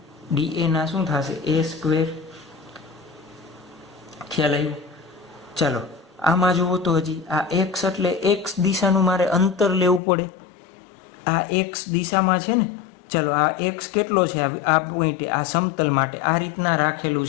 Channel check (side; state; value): right; drops out; at 10.0 s